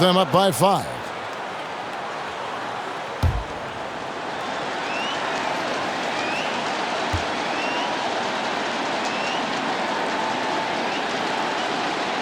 up by 5.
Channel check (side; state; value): both; identical; correlation 1.00